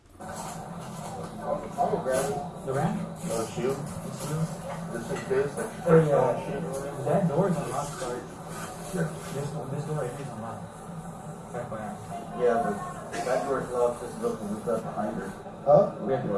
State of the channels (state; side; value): identical; both; correlation 1.00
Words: I'll go grab it. The ramp? Oh, shoe? This is this? Oh, yeah. That door is unlocked, sorry. Sure. This door right here is unlocked. FYI. Yeah, but that door's locked, this is open, we've got behind her. Huh? We have to